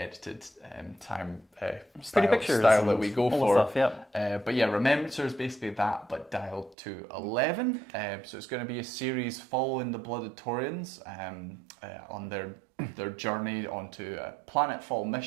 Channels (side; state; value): left; drops out; at 6.8 s